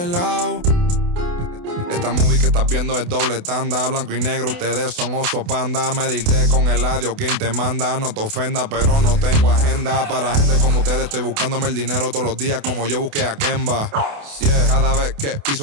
lado. Esta movie que estás viendo es doble tanda, blanco y negro, ustedes son oso panda. Medirte con el audio, quien te manda, no te ofenda, pero no tengo agenda. Para gente como ustedes estoy buscándome el dinero todos los días como yo busqué a Kemba. Yeah. Cada vez que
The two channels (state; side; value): late; left; 28 ms